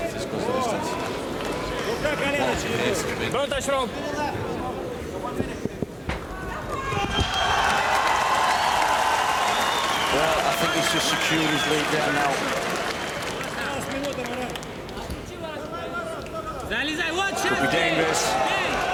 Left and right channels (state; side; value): identical; both; correlation 1.00